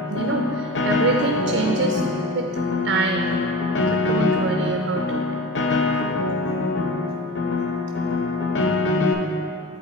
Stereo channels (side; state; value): both; normal; correlation 0.32